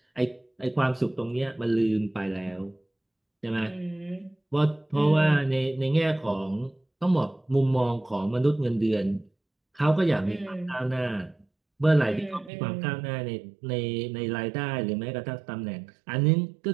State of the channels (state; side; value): drops out; left; at 12.5 s